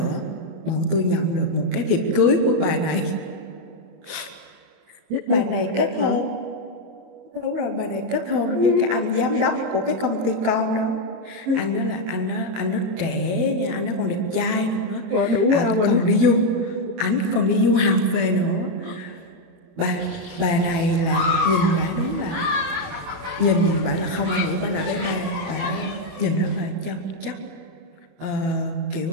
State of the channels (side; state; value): left; late; 25 ms